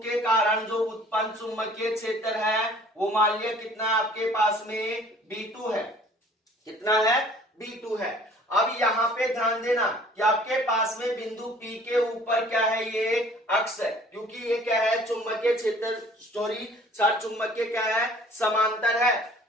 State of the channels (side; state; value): both; normal; correlation 0.52